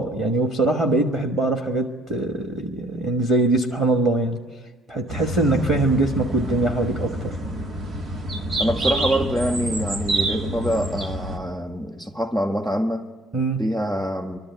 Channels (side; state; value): both; normal; correlation 0.58